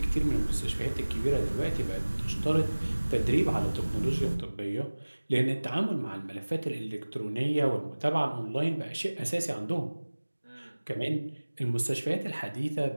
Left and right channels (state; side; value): inverted; both; correlation -1.00